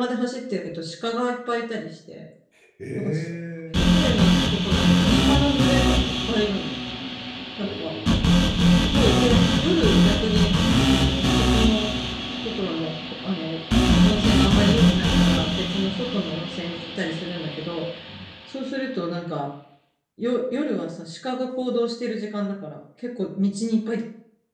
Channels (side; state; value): both; identical; correlation 1.00